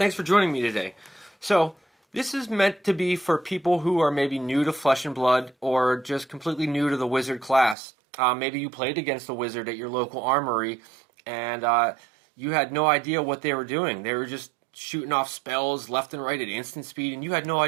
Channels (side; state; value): left; drops out; at 7.8 s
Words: for joining me today. So, this is meant to be for people who are maybe new to Flesh and Blood or just completely new to the wizard class. Maybe you played against a wizard at your local armory and you had no idea what they were doing. They were just shooting off spells left and right at instant speed, and you had no